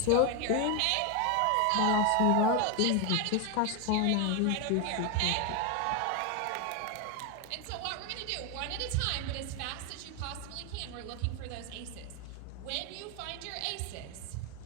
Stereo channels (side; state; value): both; different; correlation 0.01